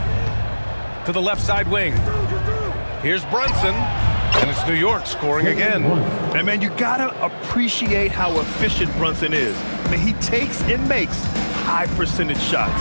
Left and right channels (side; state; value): both; inverted; correlation -1.00